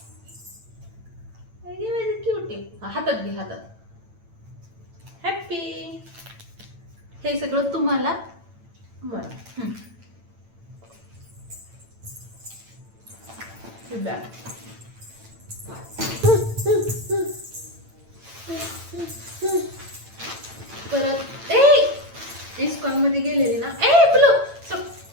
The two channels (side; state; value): left; late; 8.9 ms